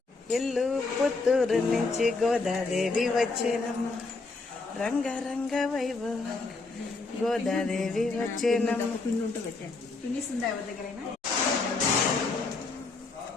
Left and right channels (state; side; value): quieter; right; 3.8 dB